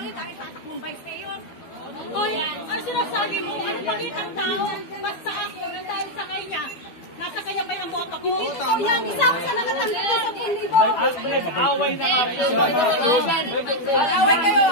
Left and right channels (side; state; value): right; late; 12 ms